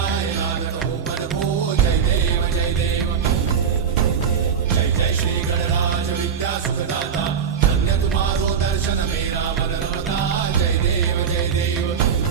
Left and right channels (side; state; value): left; quieter; 7.1 dB